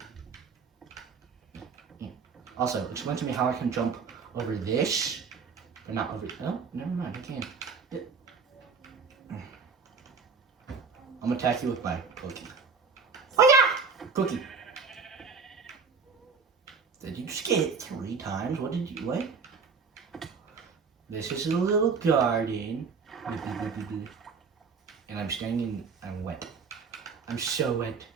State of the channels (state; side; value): quieter; left; 5.2 dB